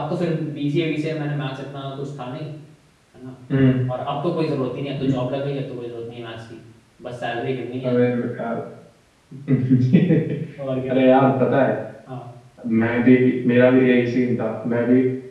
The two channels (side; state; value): both; identical; correlation 1.00